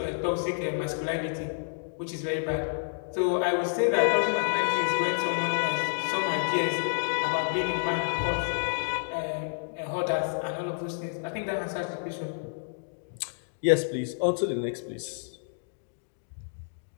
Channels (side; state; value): right; silent; digital silence